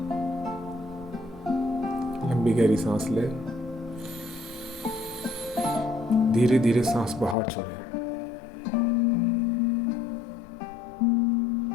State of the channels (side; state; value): right; drops out; at 7.4 s